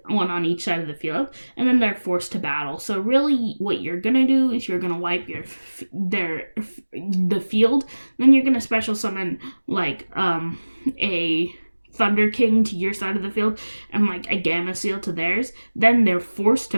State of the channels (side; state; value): both; inverted; correlation -1.00